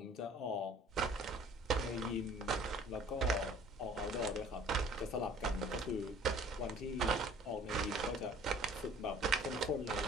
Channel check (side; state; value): both; normal; correlation 0.52